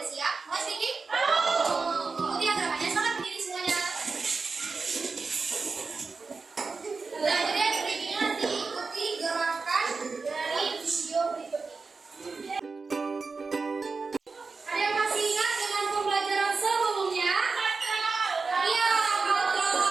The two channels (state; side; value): quieter; left; 4.4 dB